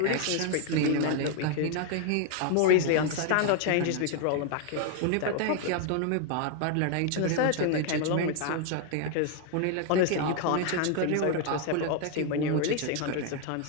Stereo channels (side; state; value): both; different; correlation 0.00